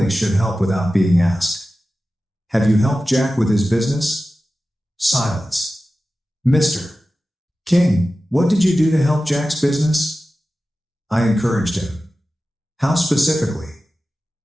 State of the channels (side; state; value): both; normal; correlation 0.95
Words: should help without being asked. Have you helped Jack with his business? Silence. Mr. King, what did you do to help Jack's business? I encouraged him. How specifically?